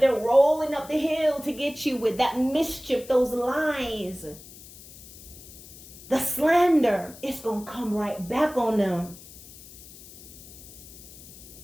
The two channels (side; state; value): left; noise; hiss, 18 dB below the sound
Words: they're rolling up the hill to get you with, that mischief, those lies, the slander, it's going to come right back on them.